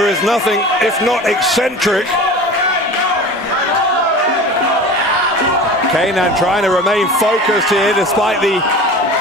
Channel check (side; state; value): both; normal; correlation 0.36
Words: is nothing if not eccentric. Kenan trying to remain focused here despite the